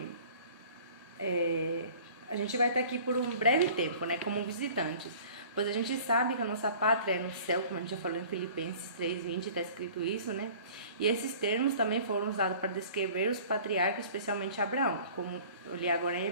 a gente vai estar aqui por um breve tempo, né? Como visitantes. Pois a gente sabe que a nossa pátria é no céu, como a gente já falou em Filipenses 3:20, está escrito isso, né? E esses termos também foram usados para descrever os patriarcas, especialmente Abraão, como eu li agora em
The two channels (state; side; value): inverted; both; correlation -0.47